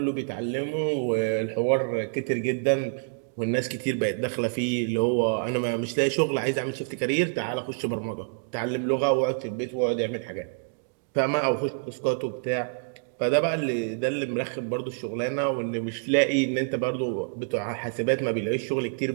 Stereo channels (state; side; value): silent; left; digital silence